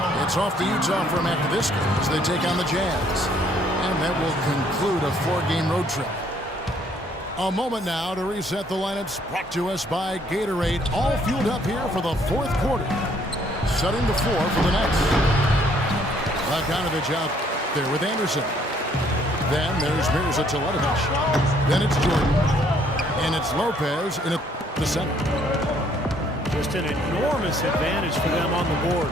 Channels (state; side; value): normal; both; correlation 0.64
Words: It's off to Utah from after this game as they take on the Jazz. And that will conclude a 4-game road trip. A moment now to reset the lineups brought to us by Gatorade. All fueled up here for the fourth quarter. Setting the floor for the Nets. Bogdanovich out there with Anderson. Then there's Mirza Teletovic. Then it's Jordan. And it's Lopez in the the center. Just an enormous advantage for them on the